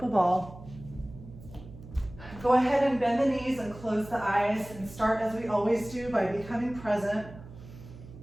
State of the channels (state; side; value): noise; right; hum, 17 dB below the sound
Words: ball. Go ahead and bend the knees and close the eyes, and start as we always do by becoming present.